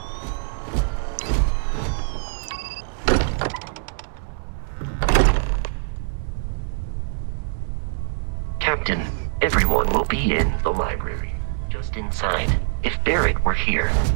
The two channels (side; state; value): left; silent; digital silence